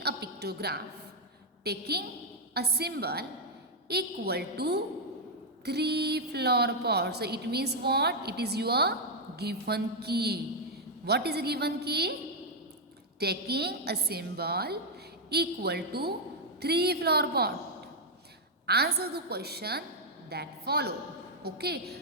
a pictograph taking a symbol equal to 3 flower pots. So it means what? It is your given key. What is a given key? Taking a symbol equal to 3 flower pot. Answer the question that follow.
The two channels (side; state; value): both; normal; correlation -0.01